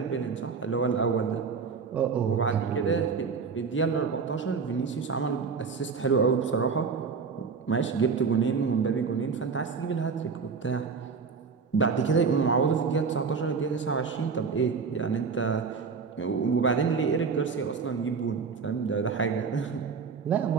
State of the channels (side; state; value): left; quieter; 5.4 dB